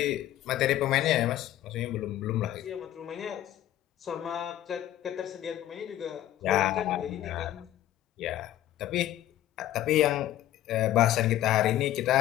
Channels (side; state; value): right; quieter; 13.2 dB